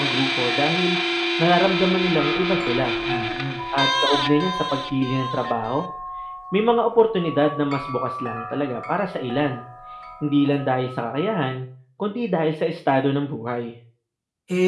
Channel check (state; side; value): identical; both; correlation 1.00